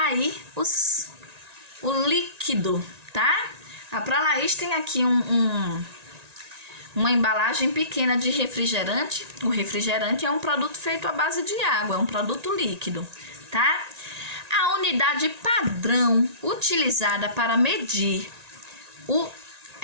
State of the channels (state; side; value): late; left; 1.9 ms